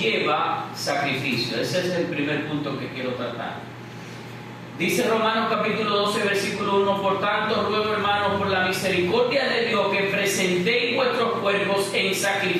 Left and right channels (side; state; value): both; identical; correlation 1.00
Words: sacrificio. Ese es el primer punto que quiero tratar. Dice Romanos capítulo 12, versículo 1: por tanto, ruego, hermanos, por la misericordia de Dios, que presentéis vuestros cuerpos en